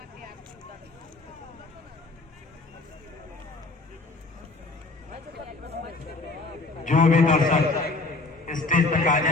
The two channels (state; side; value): quieter; right; 3.3 dB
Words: जो भी दर्शक स्टेज तक आ